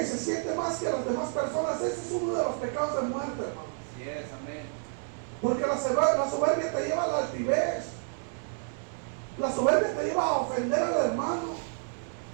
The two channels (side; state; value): left; silent; 58 dB below the other